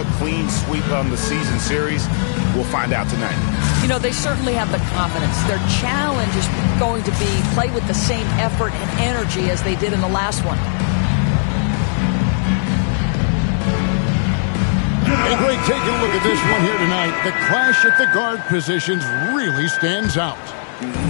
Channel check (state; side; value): silent; right; 67 dB below the other